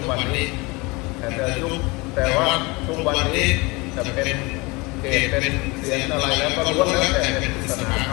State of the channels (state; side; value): quieter; right; 25.4 dB